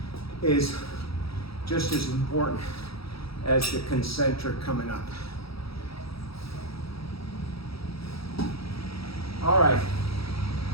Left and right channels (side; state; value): right; late; 0.76 ms